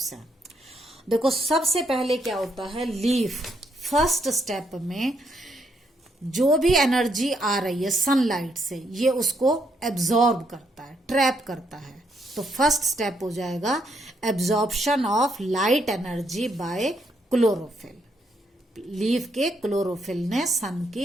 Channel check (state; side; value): normal; both; correlation 0.75